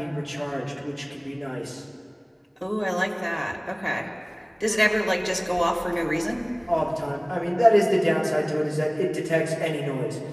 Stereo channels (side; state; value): both; identical; correlation 1.00